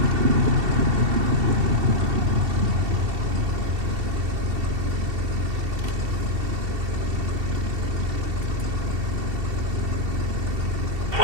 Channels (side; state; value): left; late; 2.7 ms